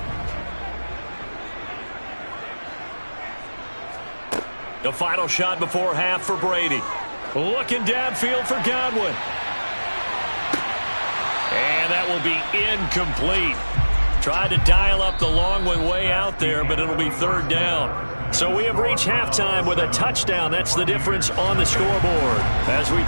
The final shot before half for Brady. Looking downfield for Godwin. And that will be incomplete. Tried to dial up the long one way out there, but it'll be 3rd down. So we have reached halftime with a touchdown. That's the difference on the scoreboard. As we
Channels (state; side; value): inverted; both; correlation -1.00